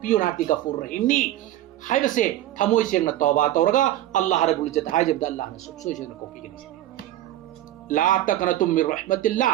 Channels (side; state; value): left; quieter; 13.7 dB